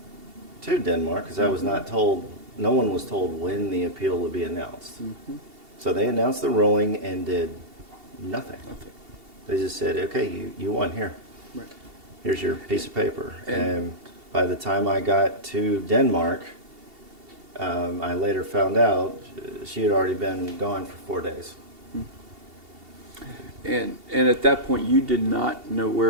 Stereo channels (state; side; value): late; left; 2.7 ms